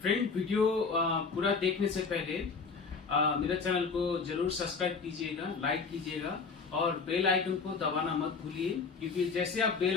Friend, video पूरा देखने से पहले मेरे चैनल को जरूर सब्सक्राइब कीजिएगा, लाइक कीजिएगा और बेल आइकन को दबाना मत भूलिए, क्योंकि जैसे आप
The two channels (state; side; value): quieter; right; 4.9 dB